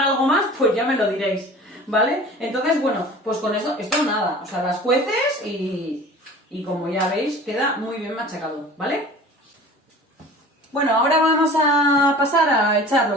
algo más, pues ya me lo diréis, ¿vale? Entonces, bueno, pues con esto nada, o sea, las cueces y como ya veis, queda muy bien machacado, ¿vale? Bueno, ahora vamos a pasar a echar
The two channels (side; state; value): both; normal; correlation 0.42